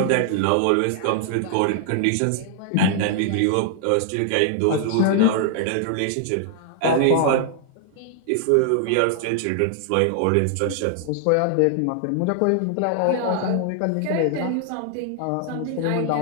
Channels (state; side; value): different; both; correlation 0.00